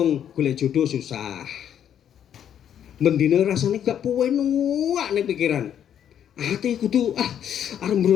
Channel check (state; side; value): quieter; right; 9.5 dB